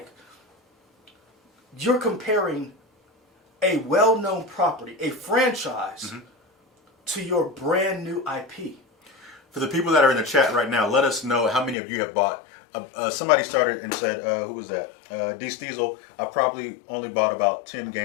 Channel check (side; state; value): right; drops out; at 11.8 s